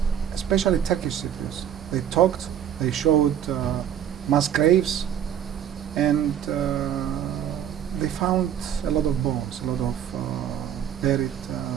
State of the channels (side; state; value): left; quieter; 9.6 dB